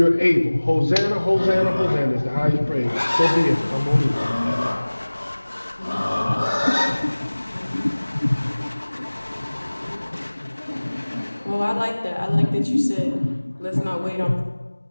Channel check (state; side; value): inverted; both; correlation -1.00